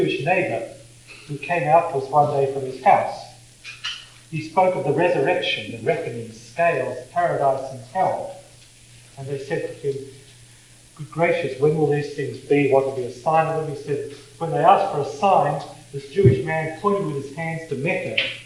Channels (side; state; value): both; identical; correlation 1.00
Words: neighbour who came out to us one day from his house. he spoke of the resurrection, the reckoning, scales, paradise and hell. And they said to him, "Good gracious, when will these things be? What will be a sign of them?" He said, when they asked for a sign, this Jewish man pointed with his hands to Mecca